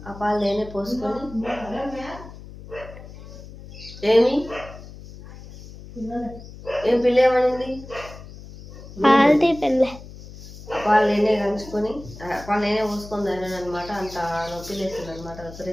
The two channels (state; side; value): noise; left; hum, 16 dB below the sound